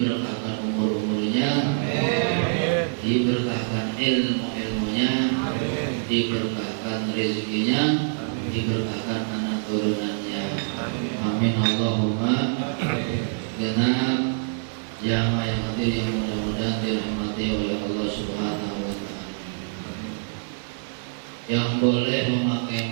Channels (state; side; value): silent; left; digital silence